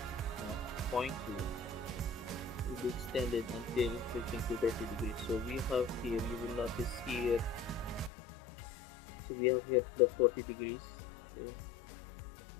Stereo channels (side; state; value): right; drops out; at 8.1 s